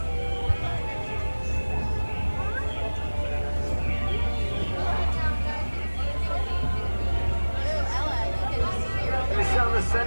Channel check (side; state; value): both; inverted; correlation -1.00